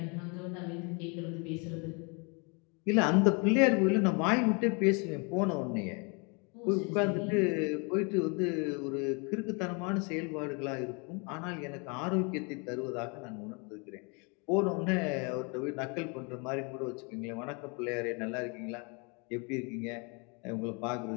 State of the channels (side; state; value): right; quieter; 32.8 dB